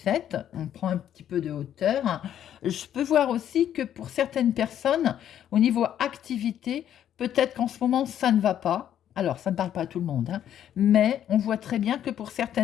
on prend un petit peu de hauteur. Je peux voir aussi que pour certaines personnes, au niveau activité, peut-être qu'en ce moment, ça ne va pas. Alors, ça ne parle pas à tout le monde, hein, mais on voit très bien que pour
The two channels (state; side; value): quieter; right; 10.4 dB